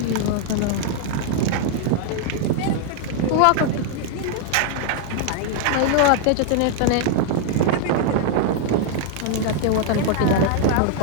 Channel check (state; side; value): different; both; correlation 0.00